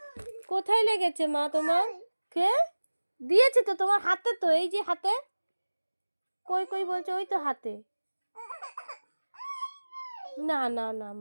কোথায় লেগেছে মা তোমার? কে দিয়েছে? তো তোমার হাতে, তো এই যে হাতে। কই কই বলছে? ওই তো হাতে। না না না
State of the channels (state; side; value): inverted; both; correlation -1.00